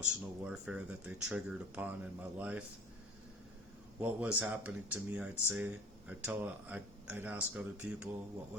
warfare that they triggered upon in my life. What was happening to me, I'd say, I'd ask other people what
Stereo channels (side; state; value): both; normal; correlation 0.42